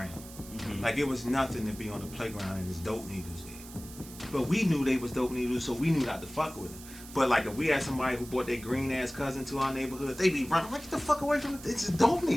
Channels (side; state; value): right; noise; hiss, 16 dB below the sound